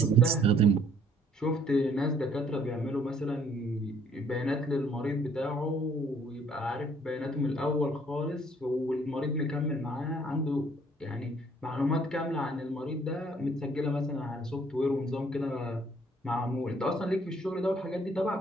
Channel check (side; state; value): both; normal; correlation 0.61